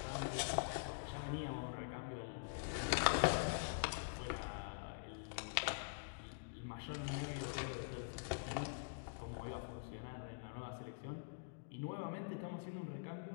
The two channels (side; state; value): right; silent; digital silence